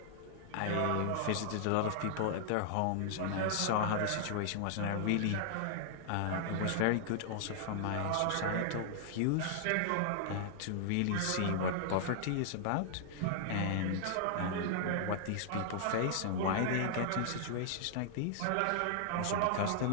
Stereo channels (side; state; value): both; different; correlation -0.01